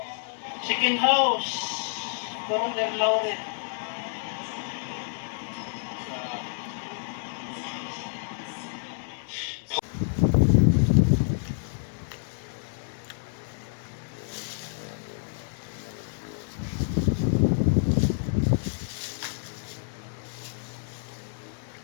chicken house. Parang Lauren.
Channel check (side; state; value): right; silent; 59 dB below the other